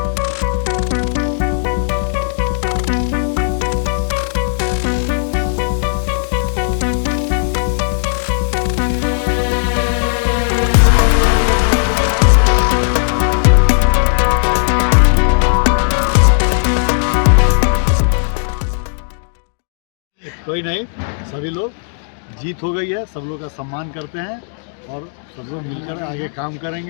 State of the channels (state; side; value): silent; right; digital silence